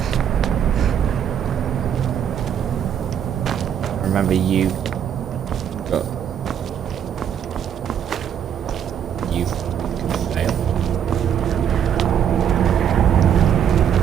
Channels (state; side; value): quieter; left; 8.8 dB